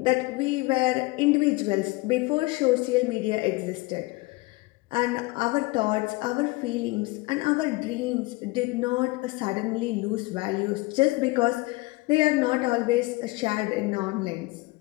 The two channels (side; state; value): right; quieter; 22.8 dB